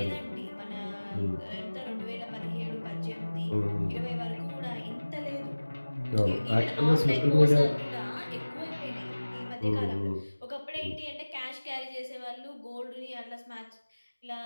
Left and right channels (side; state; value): both; inverted; correlation -1.00